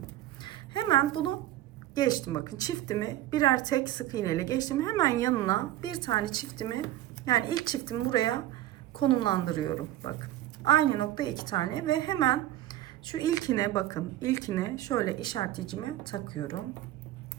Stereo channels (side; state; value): left; quieter; 14.1 dB